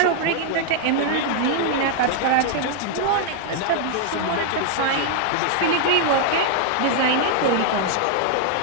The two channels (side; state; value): both; different; correlation 0.00